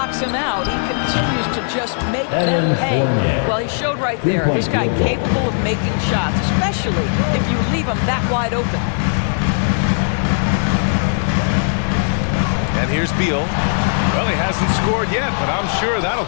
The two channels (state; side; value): silent; right; digital silence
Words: him out, he continues to just make them pay. Well, he showed right there, this guy capable of making shots, especially if you leave him that wide open. And here's Beal. Well, he hasn't scored yet, but I'm sure that'll